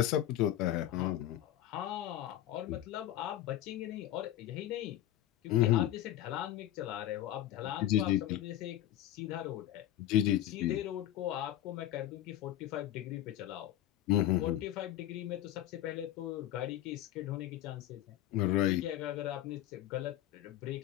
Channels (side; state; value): right; quieter; 13.0 dB